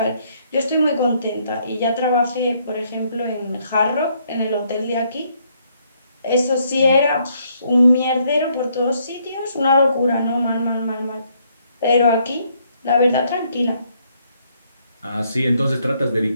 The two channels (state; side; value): inverted; both; correlation -0.70